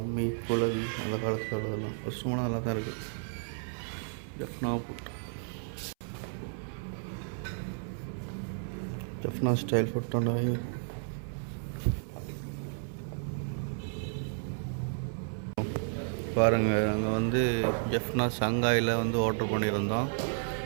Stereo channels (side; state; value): left; silent; 56 dB below the other